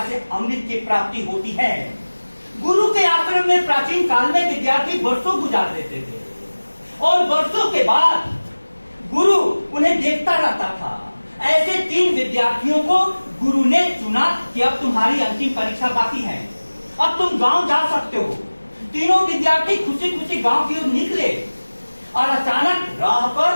से अमृत की प्राप्ति होती है। गुरु के आश्रम में प्राचीन काल में विद्यार्थी वर्षों गुजार देते थे और वर्षों के बाद गुरु उन्हें देखता रहता था। ऐसे 3 विद्यार्थियों को गुरु ने चुना कि अब तुम्हारी अंतिम परीक्षा बाकी है, अब तुम गांव जा सकते हो। तीनों विद्यार्थी खुशी खुशी गांव की ओर निकले और अचानक राह पर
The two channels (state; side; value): inverted; both; correlation -1.00